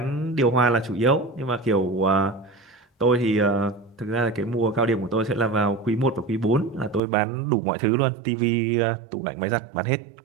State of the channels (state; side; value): drops out; left; at 7.0 s